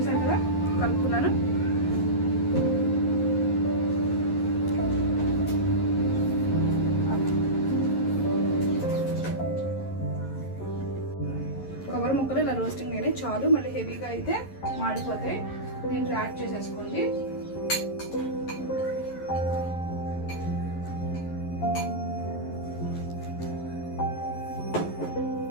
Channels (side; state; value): right; late; 11 ms